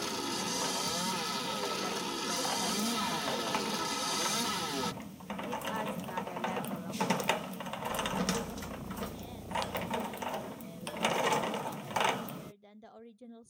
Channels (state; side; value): identical; both; correlation 1.00